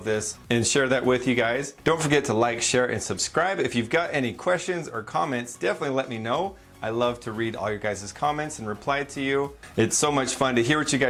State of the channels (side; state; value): both; identical; correlation 1.00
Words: this and share that with you guys. Don't forget to like, share, and subscribe. If you've got any questions or comments, definitely let me know. I love to read all your guys' comments and reply to you. It's so much fun to hear what you